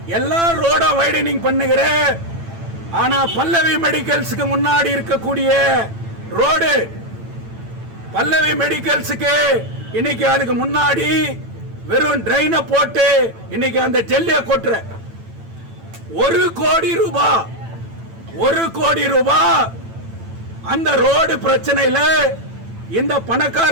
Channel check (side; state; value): left; late; 8.9 ms